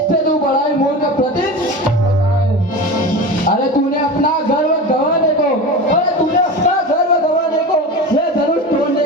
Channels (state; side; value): normal; both; correlation 0.28